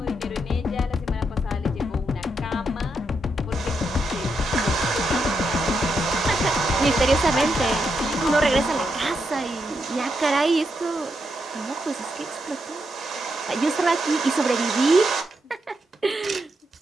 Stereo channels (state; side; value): normal; both; correlation 0.82